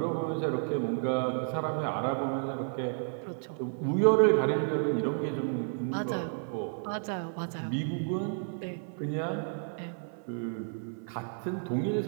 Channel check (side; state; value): left; silent; 57 dB below the other